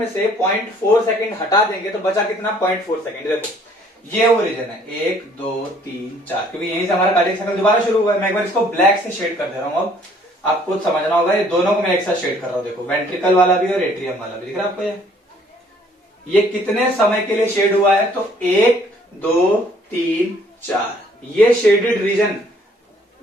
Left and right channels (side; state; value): both; normal; correlation 0.60